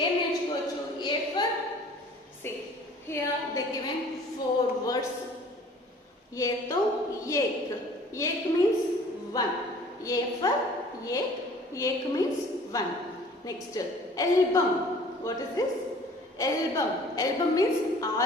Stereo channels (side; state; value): both; normal; correlation 0.50